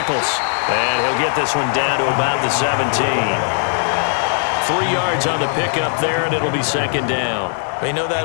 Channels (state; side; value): silent; right; digital silence